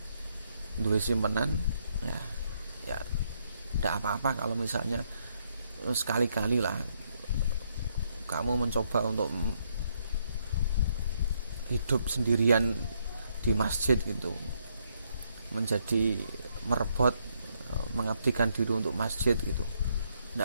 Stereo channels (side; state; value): both; inverted; correlation -0.74